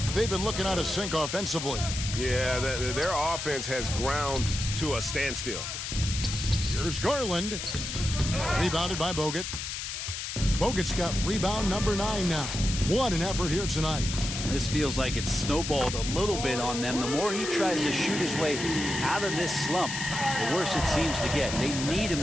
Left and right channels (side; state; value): left; noise; hiss, 5 dB below the sound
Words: They've been looking out of sync offensively. Yeah, their offense has ground to a standstill. Here's Garland. Rebounded by Bogut. Bogut's got rebound number 9 now. What an effort here tonight. This feels like it's snowballed a little bit on them. The more he tries to shoot his way out of this slump, the worse it seems to get. They need him